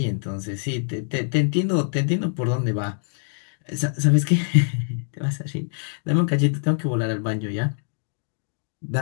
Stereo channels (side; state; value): right; silent; digital silence